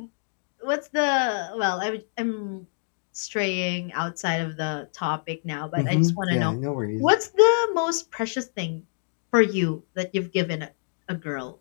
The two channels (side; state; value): right; silent; digital silence